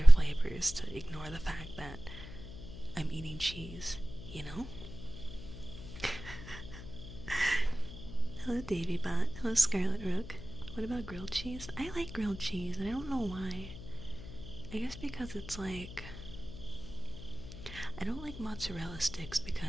flavors to ignore the fact that I'm eating cheese, you know? Hello, Davy Bot. Hello, Scarlet Rook. What about grilled cheese? I like grilled cheese, and I don't know why. I guess because it's like... I don't like mozzarella sticks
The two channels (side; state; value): left; noise; hum, 13 dB below the sound